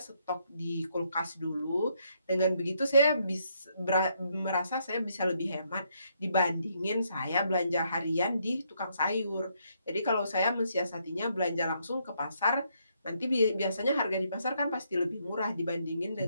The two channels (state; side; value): inverted; both; correlation -0.74